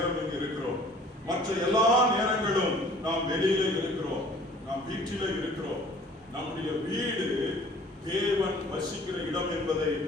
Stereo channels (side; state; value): both; normal; correlation 0.51